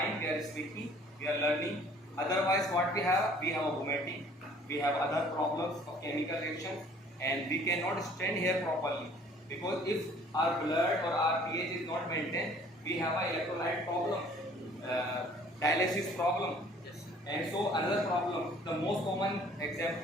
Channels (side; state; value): both; normal; correlation 0.55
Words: we are speaking, we are learning. Otherwise, what we have? We have a vomiting, we have other problems of chemical reactions, and we cannot stand here properly. Because if our blood or our pH is not maintained, we have an electrolyte problem, dialysis problem. And so another problem, the most common